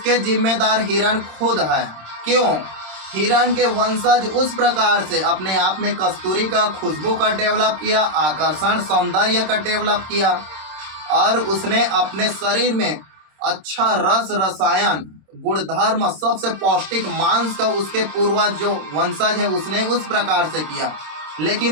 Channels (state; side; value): late; left; 26 ms